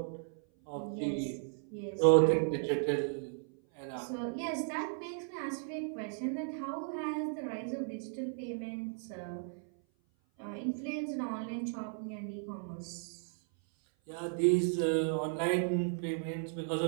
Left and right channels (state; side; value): silent; left; 54 dB below the other